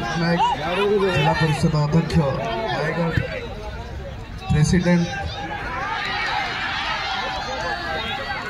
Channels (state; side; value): identical; both; correlation 1.00